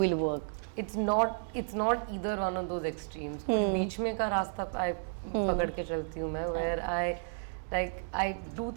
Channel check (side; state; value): left; silent; digital silence